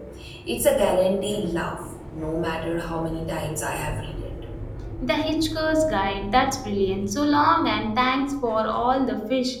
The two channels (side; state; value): both; identical; correlation 1.00